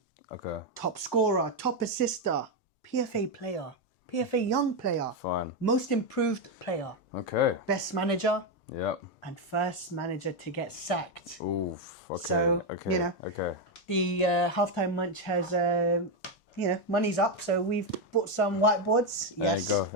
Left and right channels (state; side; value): normal; both; correlation 0.05